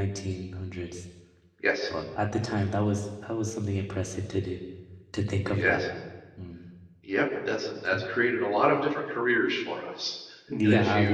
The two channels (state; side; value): identical; both; correlation 1.00